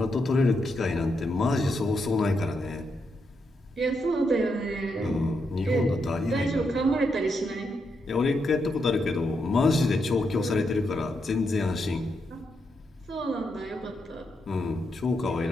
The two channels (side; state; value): both; normal; correlation 0.82